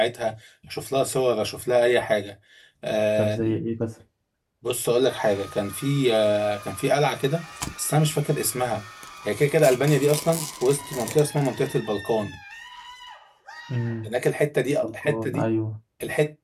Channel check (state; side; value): identical; both; correlation 1.00